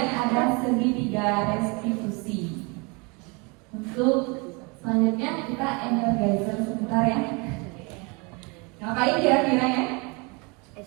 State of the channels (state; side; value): quieter; left; 29.9 dB